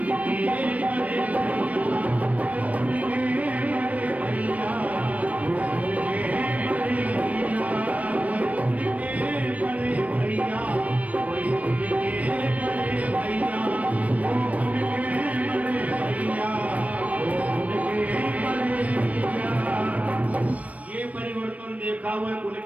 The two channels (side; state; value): left; late; 0.068 ms